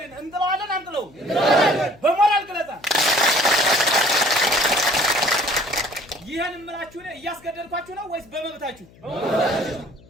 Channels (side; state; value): left; noise; hum, 26 dB below the sound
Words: እንጥለዋለን አንጥለውም? በሞራል ግለጻ ይሄን እምላችሁ ነው። እያስገደድኳችሁ ነው ወይስ በመብታችሁ?